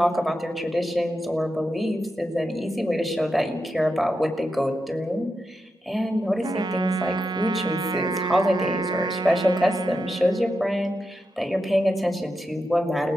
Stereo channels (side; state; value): both; normal; correlation 0.88